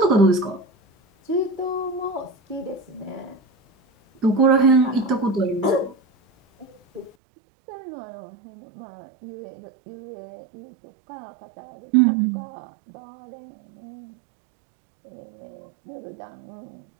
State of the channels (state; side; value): drops out; left; at 7.1 s